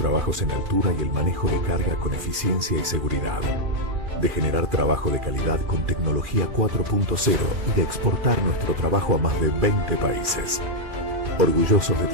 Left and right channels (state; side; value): late; left; 2.4 ms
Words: en altura y el manejo de carga con eficiencia y seguridad. De generar trabajo de calidad con tecnología 4.0 y de exportar nuestro trabajo a más de 20 países. Orgullosos de